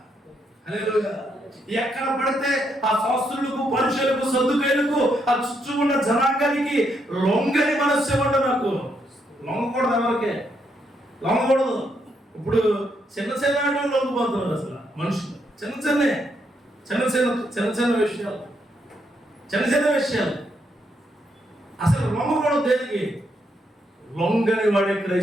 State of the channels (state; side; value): normal; both; correlation 0.77